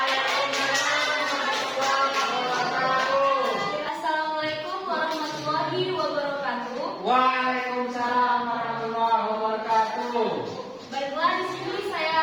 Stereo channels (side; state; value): both; identical; correlation 1.00